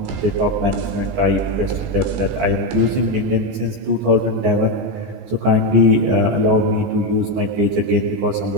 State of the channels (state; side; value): late; left; 14 ms